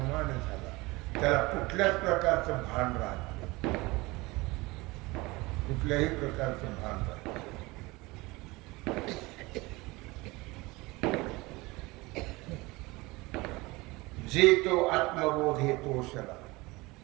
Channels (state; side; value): quieter; left; 22.6 dB